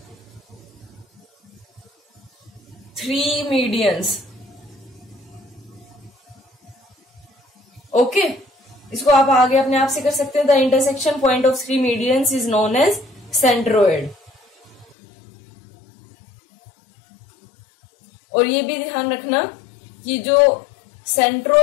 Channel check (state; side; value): drops out; right; at 15.0 s